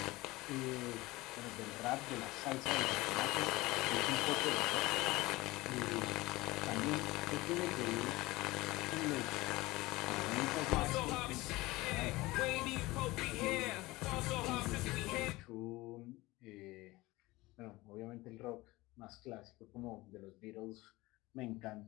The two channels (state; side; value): quieter; right; 20.3 dB